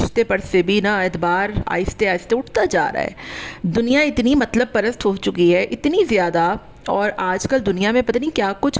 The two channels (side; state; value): both; identical; correlation 1.00